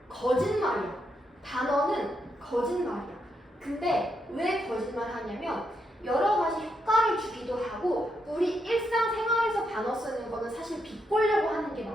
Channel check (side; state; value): both; normal; correlation 0.81